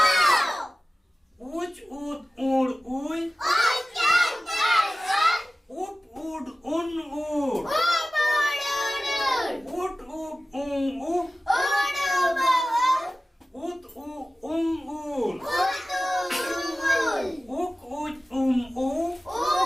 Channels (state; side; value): normal; both; correlation 0.96